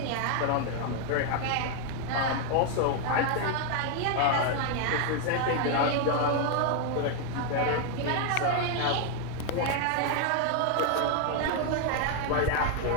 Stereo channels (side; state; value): both; different; correlation 0.00